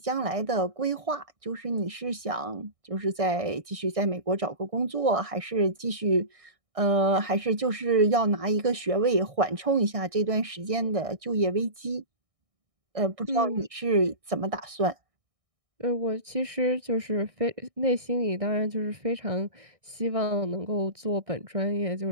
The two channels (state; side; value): late; left; 1.6 ms